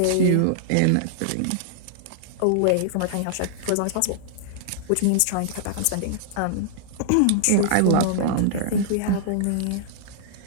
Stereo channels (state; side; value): different; both; correlation -0.01